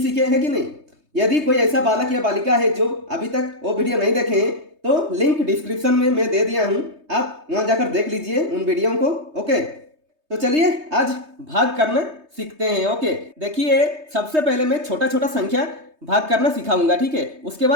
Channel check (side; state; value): left; late; 3.2 ms